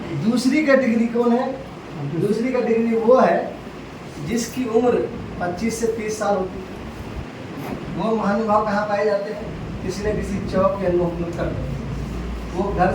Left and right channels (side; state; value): both; identical; correlation 1.00